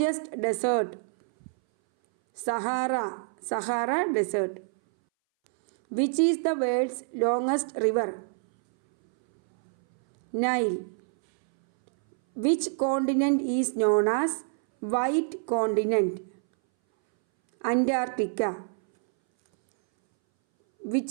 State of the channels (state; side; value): silent; left; 60 dB below the other